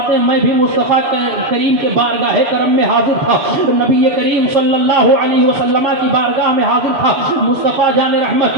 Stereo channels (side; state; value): left; late; 7.0 ms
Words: ہیں میں بھی مصطفیٰ کریم کے بارگاہ کرم میں حاضر تھا، نبی کریم صلی اللہ علیہ وسلم کی بارگاہ میں حاضر تھا۔ مصطفیٰ جان رحمت